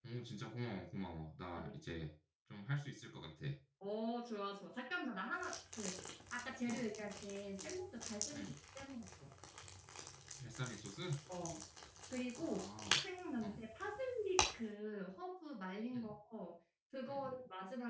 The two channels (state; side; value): identical; both; correlation 1.00